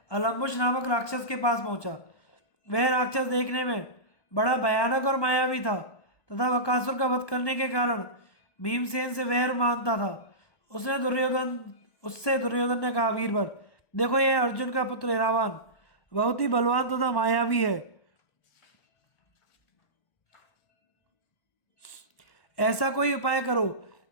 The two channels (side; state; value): right; late; 1.1 ms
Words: अलम्बुश नामक राक्षस के पास पहुंचा। वह राक्षस देखने में बड़ा भयानक और मायावी था तथा बकासुर का वध करने के कारण भीमसेन से वैर मानता था। उससे दुर्योधन ने कहा, वीरवर, देखो, यह अर्जुन का पुत्र इरावान बहुत ही बलवान तथा मायावी है। ऐसा कोई उपाय करो